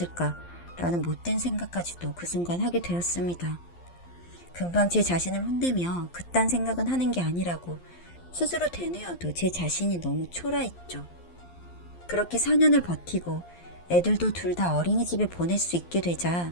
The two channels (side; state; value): right; late; 11 ms